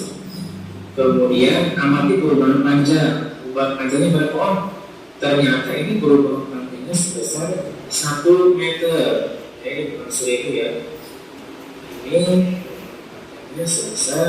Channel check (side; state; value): both; identical; correlation 1.00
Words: Kemudian amati perubahan panjang. Perubahan panjangnya berapa? Oh, ternyata ini perubahan panjangnya sebesar 1 meter. Ini bukan 1000 ya. Ini